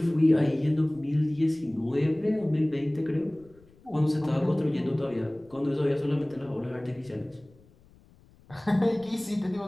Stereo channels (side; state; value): left; noise; rumble, 28 dB below the sound